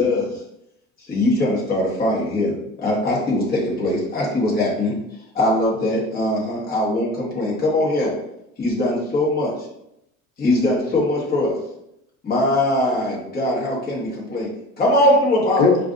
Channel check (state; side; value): normal; both; correlation 0.39